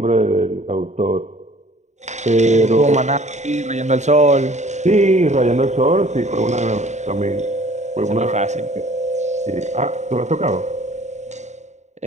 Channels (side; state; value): left; late; 0.34 ms